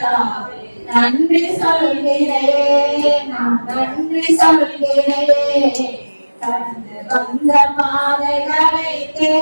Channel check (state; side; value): inverted; both; correlation -1.00